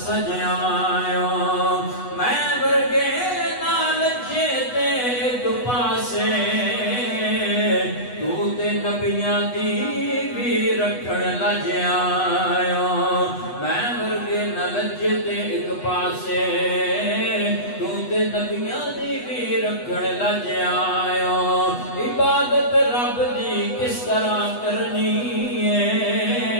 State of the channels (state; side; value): late; right; 8.1 ms